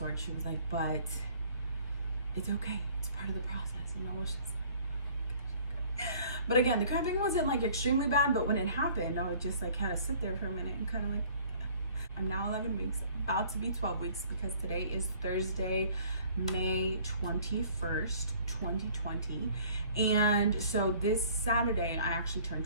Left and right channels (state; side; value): inverted; both; correlation -0.54